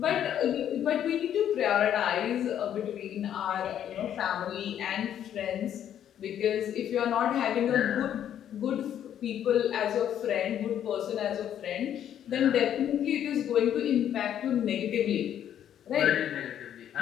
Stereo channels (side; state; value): right; quieter; 10.1 dB